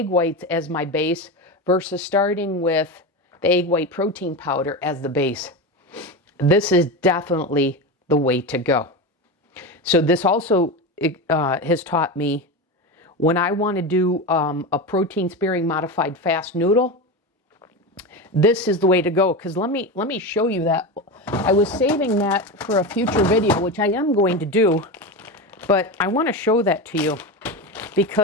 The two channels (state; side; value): normal; both; correlation 0.21